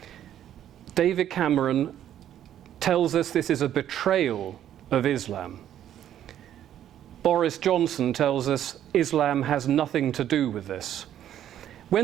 David Cameron tells us this is a betrayal of Islam. Boris Johnson tells us Islam has nothing to do with this.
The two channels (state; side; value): quieter; left; 11.0 dB